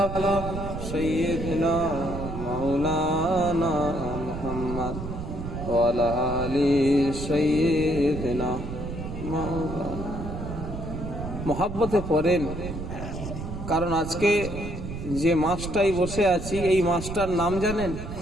سيدنا مولانا محمد وعلى آل سيدنا مولانا محبতে পড়েন, কারণ আজকে যে মাসটাই বসে আছি এই মাসটার নাম জানেন?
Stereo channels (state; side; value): noise; right; rumble, 7 dB below the sound